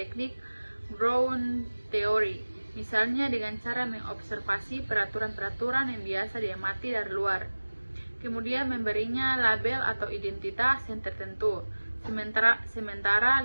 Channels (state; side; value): inverted; both; correlation -1.00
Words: Brown Theory, misalnya dengan cara mengobservasi peraturan-peraturan yang biasa diamati dari luar, kemudian memberinya label atau identitas yang tertentu. Sementara